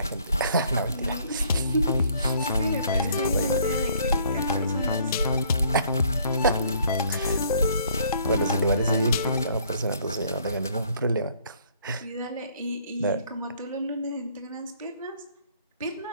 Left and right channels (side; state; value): both; inverted; correlation -0.62